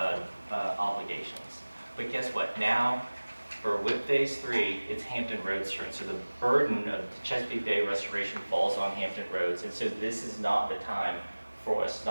obligations. But guess what? Now, for WIP Phase 3, it's Hampton Roads turn. So the burden of the Chesapeake Bay restoration falls on Hampton Roads. And so this is not the time for us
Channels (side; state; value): both; inverted; correlation -1.00